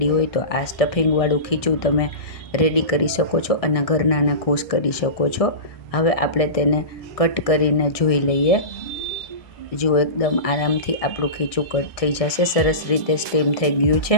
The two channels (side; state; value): right; late; 1.6 ms